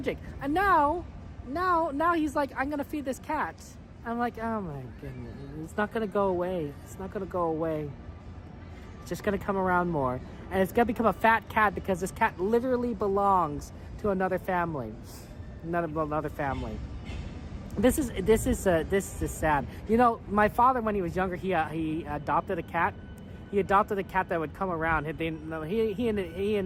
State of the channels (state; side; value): identical; both; correlation 1.00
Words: And now he's like, I'm gonna feed this cat. I'm like, oh my goodness, it's not gonna go away. It's just gonna come around more, and it's gonna become a fat cat because this cat literally belongs to another family. This is sad. You know, my father, when he was younger, he adopted a cat. He adopted a cat that would come around. He